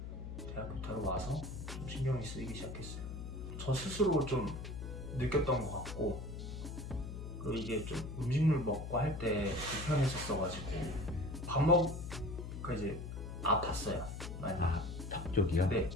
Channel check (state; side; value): noise; left; hum, 7 dB below the sound